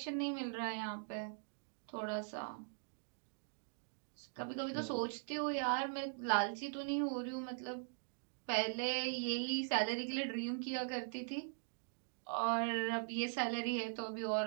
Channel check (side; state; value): left; silent; digital silence